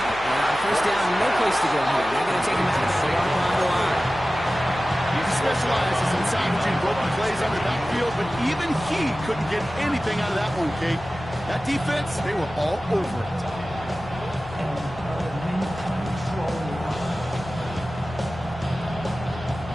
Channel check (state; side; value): noise; left; hum, 17 dB below the sound